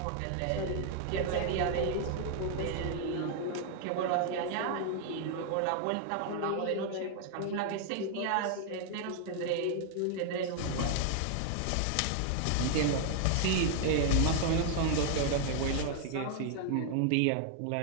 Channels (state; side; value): different; both; correlation 0.00